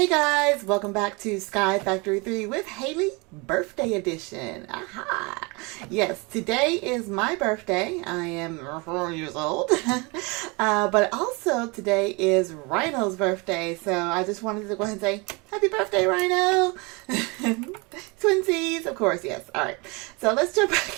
guys, welcome back to SkyFactory 3 with Haley Birthday Edition. Aha! Yes, today is my birthday. I am 4 years old. But also today is Rhino's birthday. So I just wanted to go ahead and say, happy birthday, Rhino! Twinsies, of course, yes. Alright, so let's jump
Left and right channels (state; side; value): quieter; left; 28.3 dB